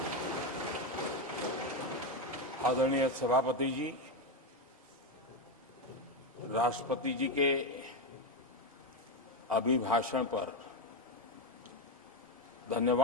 आदरणीय सभापति जी, राष्ट्रपति जी के अभिभाषण पर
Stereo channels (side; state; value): both; normal; correlation 0.09